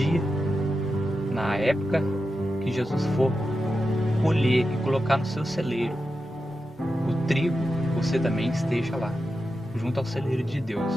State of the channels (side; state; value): both; normal; correlation 0.90